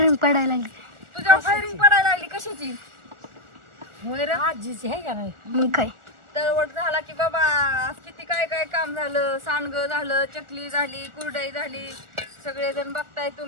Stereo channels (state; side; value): late; left; 1.4 ms